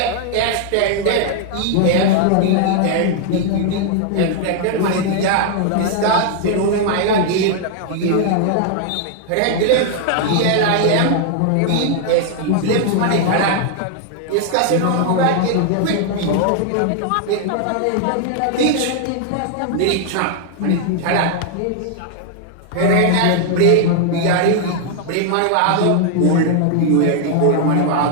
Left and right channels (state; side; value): different; both; correlation 0.00